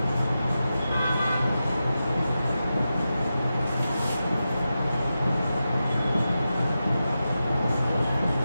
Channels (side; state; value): both; inverted; correlation -0.91